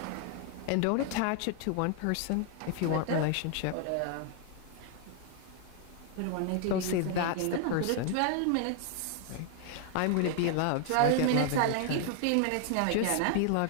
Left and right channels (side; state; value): both; different; correlation 0.00